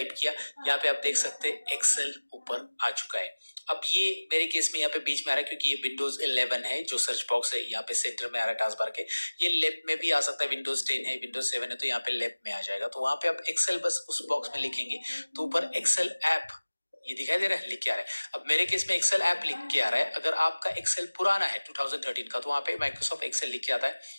किया, यहाँ पे आप देख सकते हैं एक्सेल ऊपर आ चुका है। अब ये मेरे केस में यहाँ पे बीच में आ रहा है क्योंकि ये विंडोज 11 है, जो सर्च बॉक्स है यहाँ पे सेंटर में आ रहा है टास्क बार के। ये लेफ्ट में भी आ सकता है, विंडोज 10 है, विंडोज 7 है, तो यहाँ पे लेफ्ट में आ जाएगा। तो वहां पे आप एक्सेल बस उस बॉक्स में लिखेंगे तो ऊपर एक्सेल ऐप ये दिखाई दे रहा है, लिख के आ रहा है। अब मेरे केस में एक्सेल ऐप लिख के आ रहा है। अगर आपका एक्सेल पुराना है 2013 का तो वहां पे माइक्रोसॉफ्ट एक्सेल लिख के आता है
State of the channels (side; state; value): both; inverted; correlation -1.00